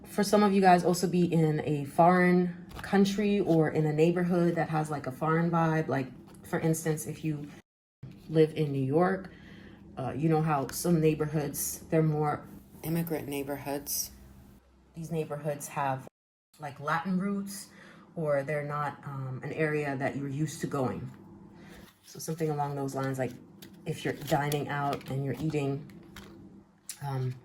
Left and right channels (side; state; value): both; identical; correlation 1.00